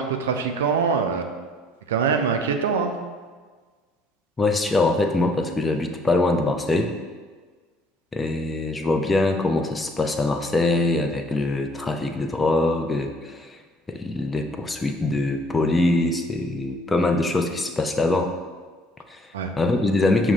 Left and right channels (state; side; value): normal; both; correlation 0.61